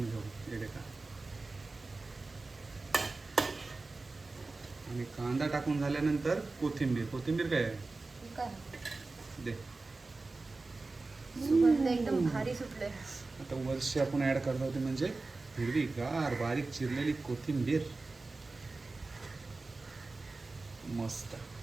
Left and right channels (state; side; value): quieter; left; 3.5 dB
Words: घेऊ. हे देखा आणि कांदा टाकून झाल्यानंतर कोथिंबीर. कोथिंबीर काय आहे काय दे. सुगंध एकदम भारी सुटले. आता वर्षी आपण ऍड करतो ते म्हणजे हिरवीगार बारीक चिरलेली कोथिंबीर. मस्त.